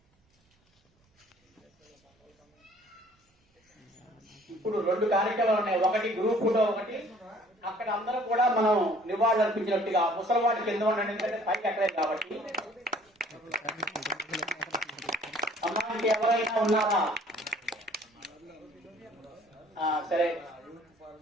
ఇప్పుడు 2 కార్యక్రమాలు ఉన్నాయి. ఒకటి గ్రూప్ ఫోటో, ఒకటి అక్కడ అందరూ కూడా మనం నివాళులు అర్పించినట్టుగా. ముసలివాడి కింద ఉండండి, ఎందుకంటే పైకి ఎక్కలేదు కాబట్టి. అమ్మాయికి ఎవరైనా ఉన్నారా? సరే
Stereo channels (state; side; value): normal; both; correlation 0.55